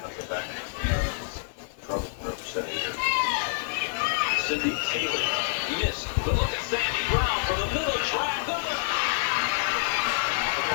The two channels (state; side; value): silent; right; digital silence